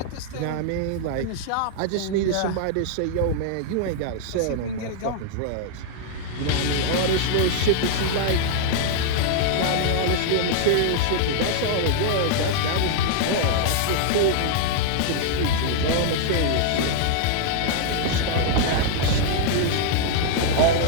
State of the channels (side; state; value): both; different; correlation -0.01